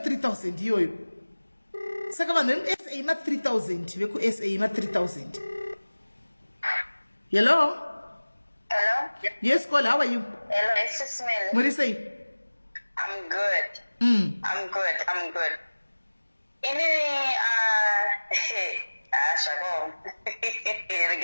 iyoyo. Saka vanhu veSA ma 3000 veku SA ma 3000. Hello? Hello? Yes, call. How are you? Hello, SIS MELLY. What do you say? I'm good. I'm good. Shako.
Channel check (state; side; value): inverted; both; correlation -1.00